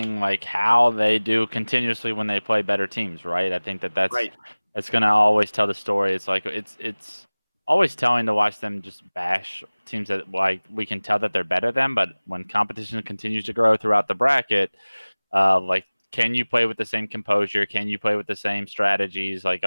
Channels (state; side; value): inverted; both; correlation -1.00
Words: like how they do continuously when they play better teams, right? I think that's Right. it's gonna always tell the story. It's like it's always telling to watch them just bash teams that like we can tell that they're better than, but when competition continues to grow throughout the bracket, like can you play with the same composure? Can you play with the same strategies? Like